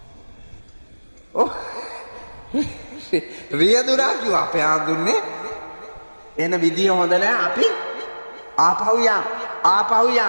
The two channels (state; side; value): inverted; both; correlation -1.00